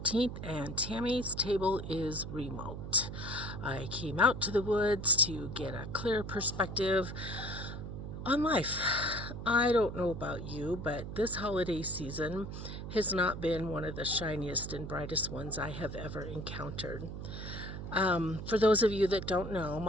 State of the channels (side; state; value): right; noise; hum, 8 dB below the sound